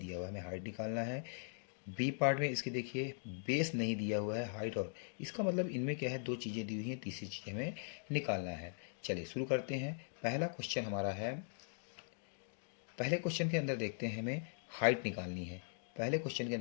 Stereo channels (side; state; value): right; silent; digital silence